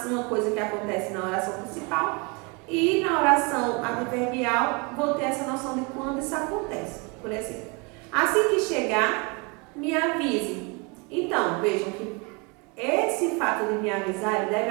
coisa que acontece na oração principal e na oração adverbial vou ter essa noção de quando isso acontece. Por exemplo, assim que chegar, me avise. Então, vejam que esse fato de me avisar deve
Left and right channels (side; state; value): left; quieter; 30.0 dB